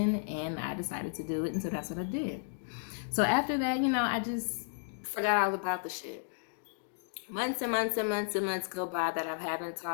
and I decided to do it, and so that's what I did. So after that, I just forgot all about the shit. Months and months and months and months go by that I haven't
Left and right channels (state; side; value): silent; right; digital silence